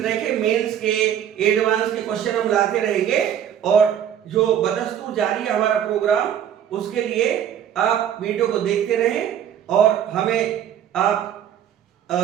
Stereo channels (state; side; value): quieter; left; 9.6 dB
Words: के मेंस के एडवांस के क्वेश्चन हम लाते रहेंगे, और जो बदस्तूर जारी है हमारा प्रोग्राम, उसके लिए आप वीडियो को देखते रहें और हमें आप